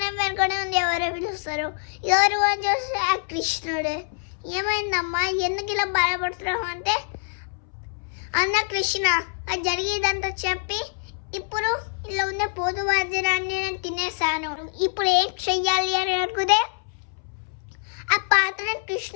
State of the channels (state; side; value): silent; right; 62 dB below the other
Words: వెనుకనే ఉంది ఎవరో పిలుస్తారు. ఎవరు అని చూస్తే ఆ కృష్ణుడే. ఏమైందమ్మా, ఎందుకు ఇలా బాధపడుతున్నావు అంటే, అన్న కృష్ణ అది జరిగేదంతా చెప్పి ఇప్పుడు ఇలా ఉన్న పోతు వాద్యాన్ని నేను తినేసాను, ఇప్పుడు ఏం చెయ్యాలి అని అనుకుంటే ఆ పాత్రను